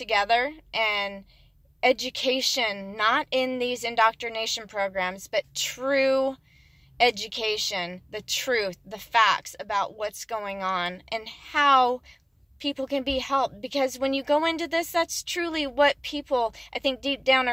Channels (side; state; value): both; identical; correlation 1.00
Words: and education, not in these indoctrination programs, but true education, the truth, the facts about what's going on and how people can be helped. Because when you go into this, that's truly what people, I think, deep down